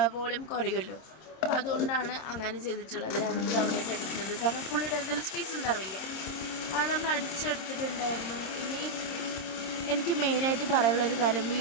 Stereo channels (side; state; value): right; late; 26 ms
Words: വോളിയം കുറയുമല്ലോ. അപ്പോൾ അതുകൊണ്ടാണ് അങ്ങനെ ചെയ്തിട്ടുള്ളത്. രണ്ട് തവണയായിട്ട് അടിക്കുന്നത്. കാരണം ഫുള്ളിട്ട് എന്തെങ്കിലും സ്പേസ് ഉണ്ടാവില്ല. അത് നമ്മൾ അടിച്ചെടുത്തിട്ടുണ്ടായിരുന്നു. ഇനി എനിക്ക് മെയിനായിട്ട് പറയാനുള്ളൊരു കാര്യം,